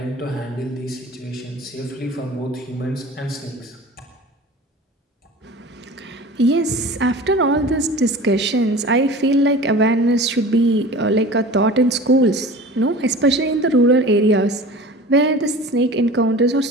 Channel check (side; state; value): both; normal; correlation 0.38